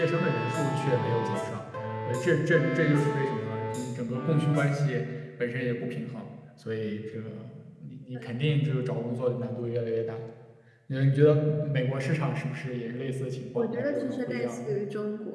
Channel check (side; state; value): both; identical; correlation 1.00